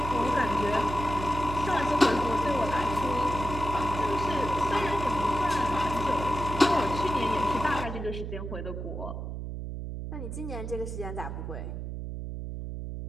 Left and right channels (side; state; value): right; noise; hum, 6 dB below the sound